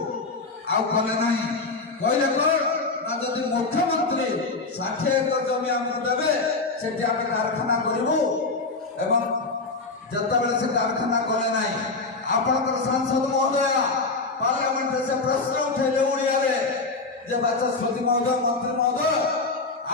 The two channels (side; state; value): right; quieter; 3.7 dB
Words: आले ना कहले कौन ना जदि मुख्यमंत्री 60 एकड़ जमी आमको देवे से कारखाना करूँ एवं जिते से कारखाना कले ना आपणकर सांसद महोदय पार्लियामेंट से प्रश्न उठेले ओडिया जे बाचस्पति महोदय मंत्री महोदय